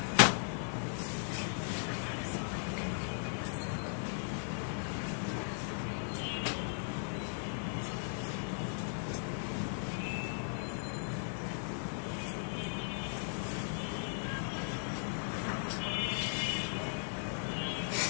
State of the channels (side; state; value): right; silent; digital silence